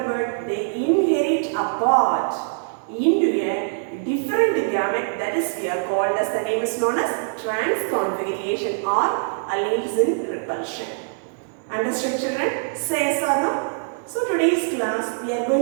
word, they inherit apart into a different gamete, that is we are called as, the name is known as transconfiguration or alleles in repulsion. Understood, children? Say yes or no? So today's class we are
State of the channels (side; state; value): left; silent; digital silence